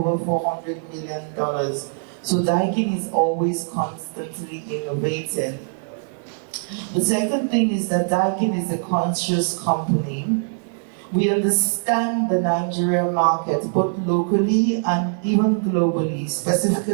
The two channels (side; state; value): left; silent; digital silence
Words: $400 million. So Daikin is always constantly innovating. The second thing is that Daikin is a conscious company. We understand the Nigerian market, both locally and even globally,